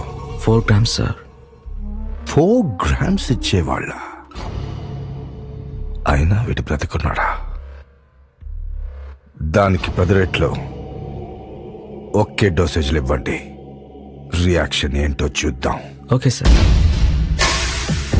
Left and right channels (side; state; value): both; identical; correlation 1.00